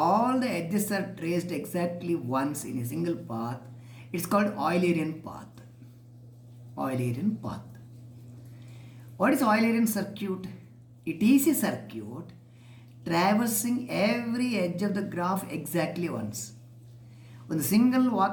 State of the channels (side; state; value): both; identical; correlation 1.00